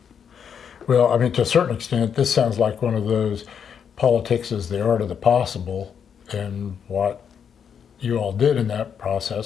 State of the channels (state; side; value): quieter; right; 7.5 dB